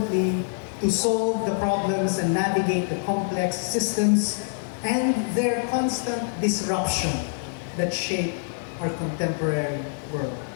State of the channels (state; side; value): silent; right; digital silence